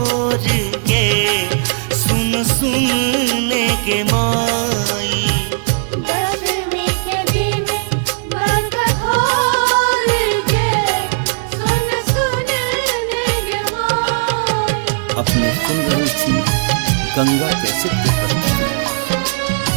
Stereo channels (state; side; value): silent; left; digital silence